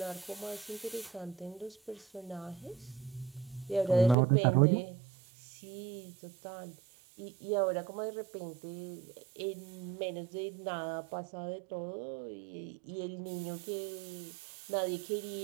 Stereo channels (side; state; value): left; drops out; at 4.2 s